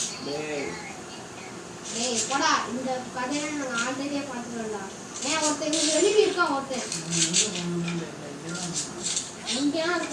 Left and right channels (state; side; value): identical; both; correlation 1.00